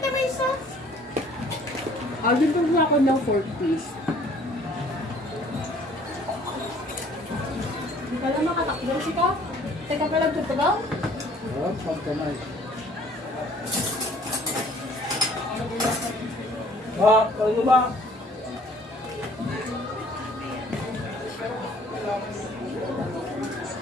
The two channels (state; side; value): normal; both; correlation 0.56